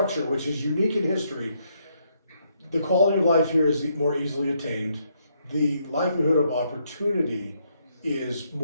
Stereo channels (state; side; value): inverted; both; correlation -0.74